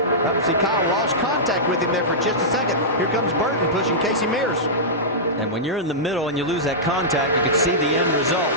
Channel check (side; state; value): both; normal; correlation -0.13